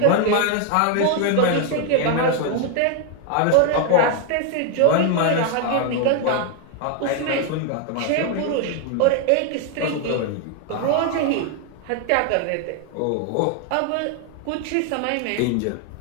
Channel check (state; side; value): different; both; correlation 0.01